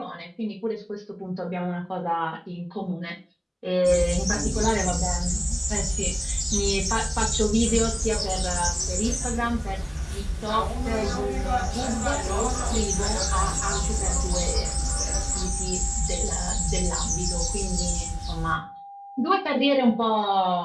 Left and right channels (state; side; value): identical; both; correlation 1.00